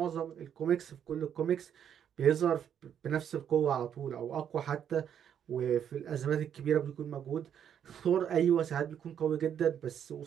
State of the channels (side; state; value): left; quieter; 8.9 dB